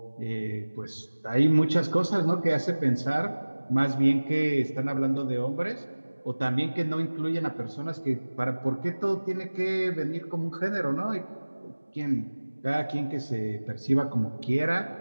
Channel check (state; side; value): inverted; both; correlation -1.00